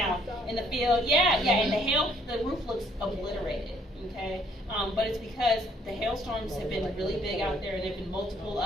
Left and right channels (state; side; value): normal; both; correlation 0.64